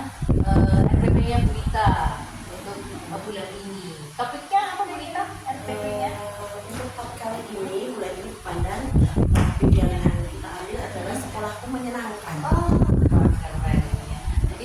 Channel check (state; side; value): identical; both; correlation 1.00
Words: RPP-nya Bu Ita untuk bulan ini. Topiknya apa Bu Ita? RPP-nya? Untuk topik kali ini, bulan ini pandang topik yang kita ambil adalah sekolahku menyenangkan. Oh, keren ya.